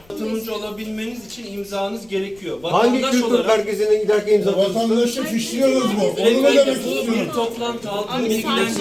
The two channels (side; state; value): left; noise; rumble, 28 dB below the sound